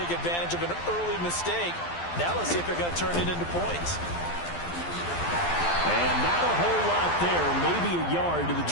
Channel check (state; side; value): late; right; 12 ms